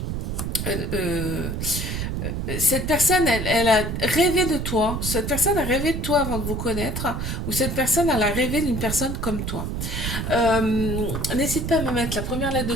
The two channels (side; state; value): right; noise; rumble, 3 dB below the sound